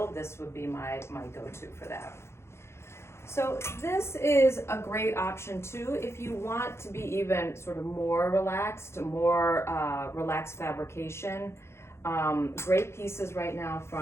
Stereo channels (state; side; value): late; right; 0.13 ms